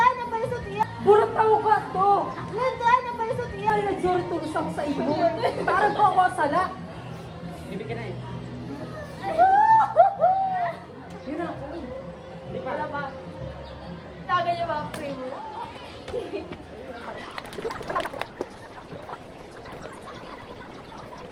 ang balisot iya! Burat tao ka to! Landaan ang balisot iya! Ay, nag-sorry tulusang sa iyo! Tarang ko ako sala! Bibig ka na eh. Yun na! Hindi pala ba? Taga niya ba ang primo?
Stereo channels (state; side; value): identical; both; correlation 1.00